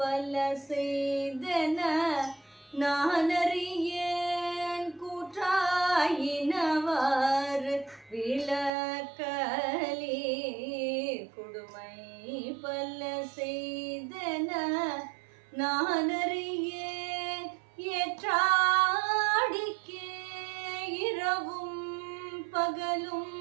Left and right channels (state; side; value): drops out; left; at 8.7 s